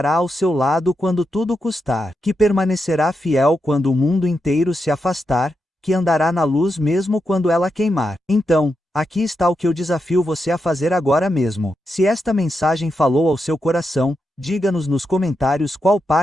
ao seu lado quando tudo custar, que permanecerá fiel quando o mundo inteiro se afastar, que andará na luz mesmo quando ela queimar. Então, aqui está o que eu desafio você a fazer agora mesmo. Se esta mensagem falou ao seu coração, Diga-nos nos comentários qual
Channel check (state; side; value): normal; both; correlation 0.85